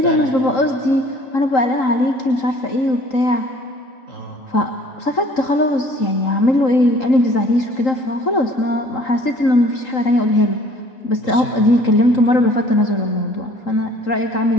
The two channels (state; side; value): late; right; 3.8 ms